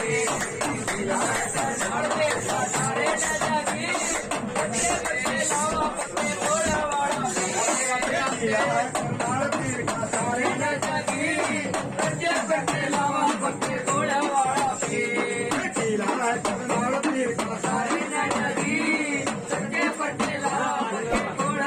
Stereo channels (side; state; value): both; identical; correlation 1.00